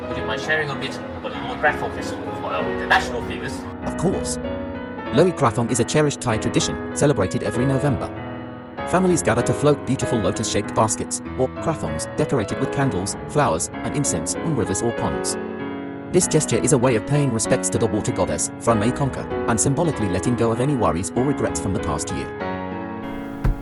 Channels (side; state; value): both; identical; correlation 1.00